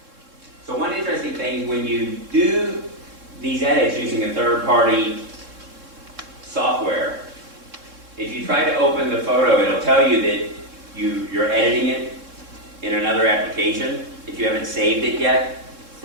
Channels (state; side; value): late; left; 3.7 ms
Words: So one interesting thing, when you do these edits using a third-party software, if you try to open the photo, it'll tell you that you're editing it in another application if you haven't saved it yet